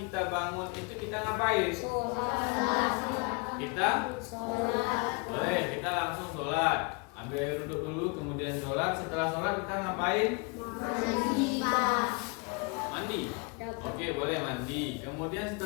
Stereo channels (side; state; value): right; quieter; 32.5 dB